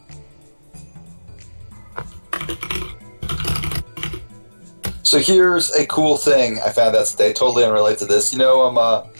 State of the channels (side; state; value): both; inverted; correlation -1.00